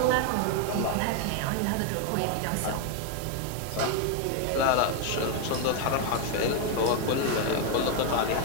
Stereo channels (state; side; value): different; both; correlation 0.01